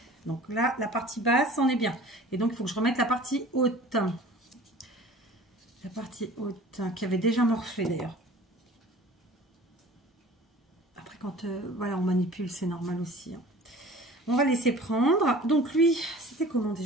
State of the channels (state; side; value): normal; both; correlation 0.45